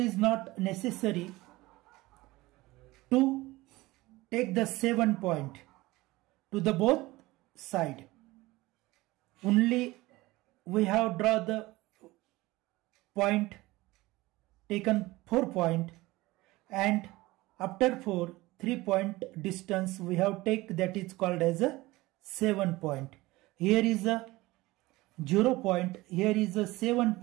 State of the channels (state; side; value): quieter; left; 19.8 dB